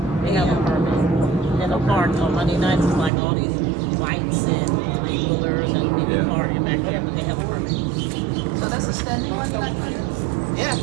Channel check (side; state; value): left; drops out; at 3.1 s